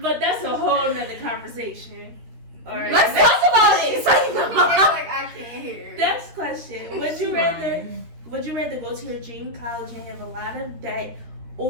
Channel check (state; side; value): late; left; 13 ms